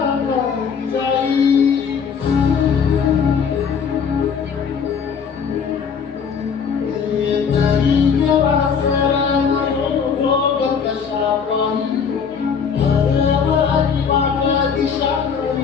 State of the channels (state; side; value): quieter; right; 6.5 dB